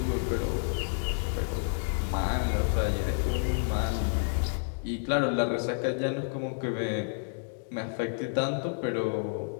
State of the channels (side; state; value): right; silent; digital silence